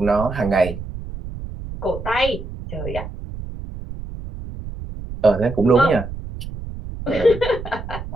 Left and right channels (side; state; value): right; noise; rumble, 10 dB below the sound